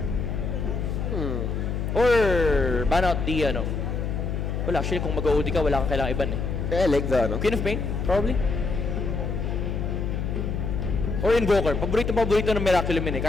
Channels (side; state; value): left; noise; hum, 2 dB below the sound